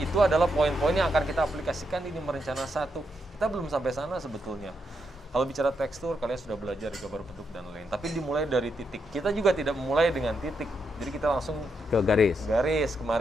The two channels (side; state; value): both; normal; correlation 0.81